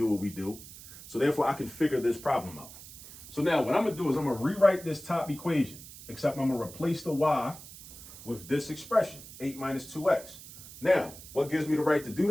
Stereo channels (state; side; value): noise; right; hiss, 16 dB below the sound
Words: what we do, so therefore I can figure this problem out. So now what I'm going to do is I'm going to rewrite this top equation, except I'm going to replace the y with this expression, 8 minus 2x. Now, what gives me the right to do